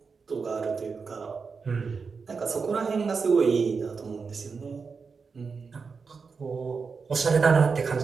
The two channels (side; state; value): left; quieter; 5.1 dB